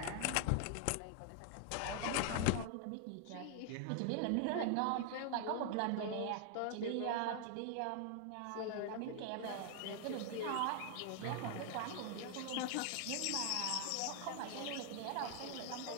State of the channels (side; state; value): both; different; correlation 0.00